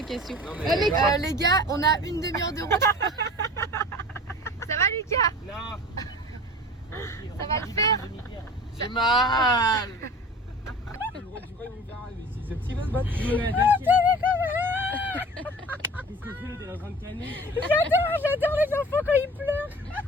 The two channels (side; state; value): both; normal; correlation 0.40